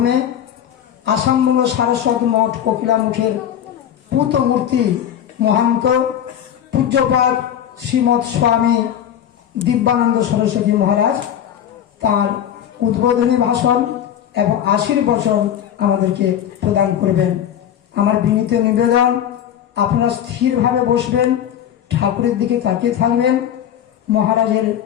আসামবঙ্গ সারস্বত মঠ কোকিলামুখের পূত মূর্তি মহান্ত পূজ্যপাদ শ্রীমৎ স্বামী দিব্যানন্দ সরস্বতী মহারাজ তার উদ্বোধনী ভাষণ এবং আশীর্বচন আমাদেরকে প্রদান করবেন। আমার বিনীত নিবেদন, আপনারা স্থিরভাবে বসবেন, ঠাকুরের দিকে তাকিয়ে থাকবেন, মহারাজের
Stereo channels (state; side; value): quieter; right; 10.0 dB